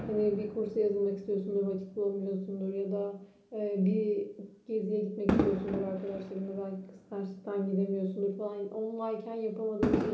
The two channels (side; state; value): both; identical; correlation 1.00